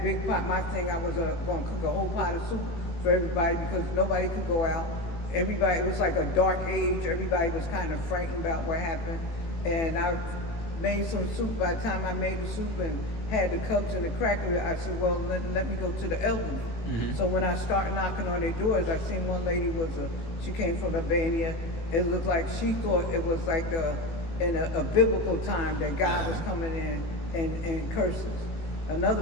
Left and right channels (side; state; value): right; late; 18 ms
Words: pot. My thing, I was going to cook a whole pot of soup for everybody because nobody could go out. Everybody, it was like a dark age. Everybody was kind of frightened about what happened. And I made some soup. By the time I made the soup and had the cups and the cracker, I said, well, let me go to the elderly. So when I started knocking on their doors, I seen one lady she came from Albania. It looked like she thought it was like in a biblical time that God was coming in and curses.